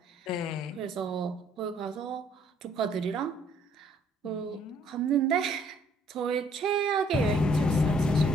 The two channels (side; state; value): both; normal; correlation 0.63